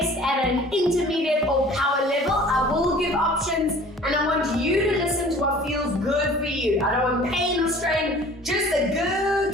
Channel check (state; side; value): normal; both; correlation 0.48